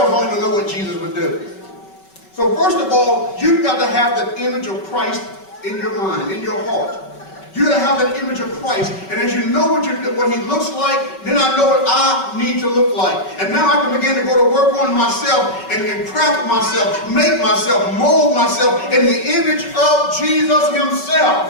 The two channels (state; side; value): late; right; 5.3 ms